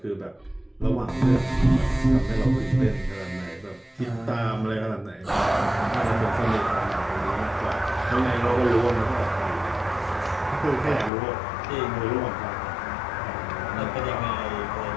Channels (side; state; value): right; drops out; at 11.1 s